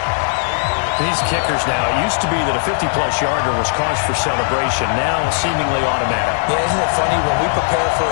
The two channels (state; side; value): silent; right; digital silence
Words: These kickers now, it used to be that a 50-plus yarder was cause for celebration. Now, seemingly automatic. Yeah, isn't it funny when we prepare for